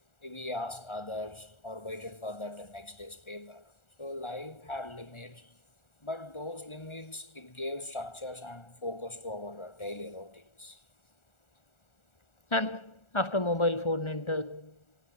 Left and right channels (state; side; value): late; right; 1.4 ms